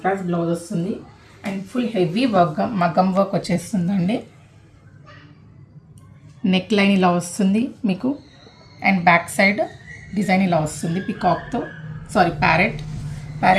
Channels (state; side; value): identical; both; correlation 1.00